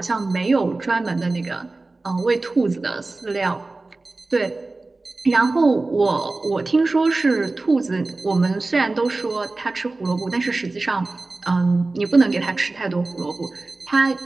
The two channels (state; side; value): quieter; left; 3.3 dB